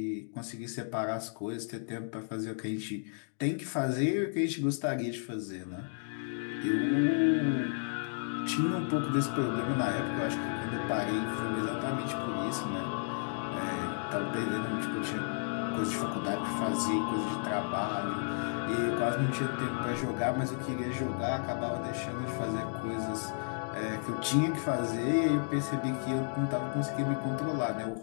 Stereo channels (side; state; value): right; silent; digital silence